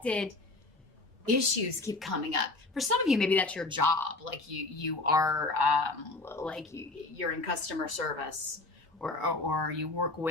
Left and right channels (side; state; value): right; quieter; 3.2 dB